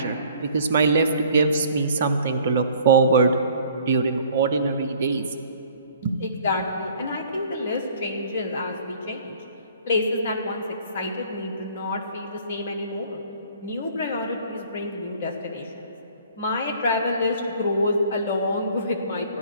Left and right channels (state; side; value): inverted; both; correlation -0.54